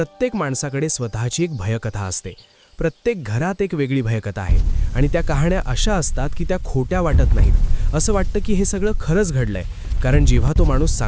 माणसाकडे स्वतःची एक भयकथा असते. प्रत्येक घरात एक वेगळी भयकथा आहे आणि त्या कहाण्या अशा असतात की त्या खोट्या वाटत नाहीत. असं वाटतं की हे सगळं खरंच घडलंय, कारण जेव्हा तो माणूस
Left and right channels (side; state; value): both; identical; correlation 1.00